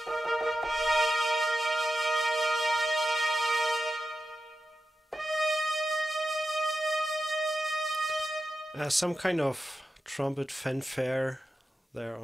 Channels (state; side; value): normal; both; correlation 0.90